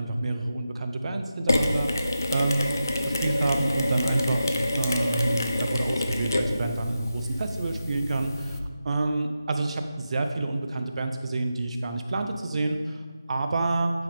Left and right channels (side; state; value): both; inverted; correlation -0.90